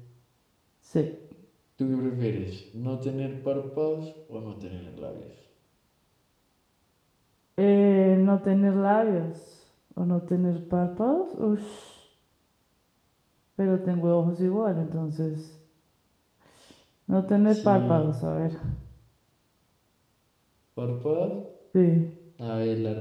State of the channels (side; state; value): both; identical; correlation 1.00